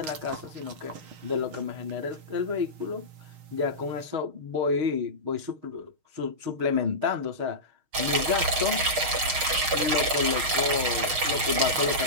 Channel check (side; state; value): left; late; 6.5 ms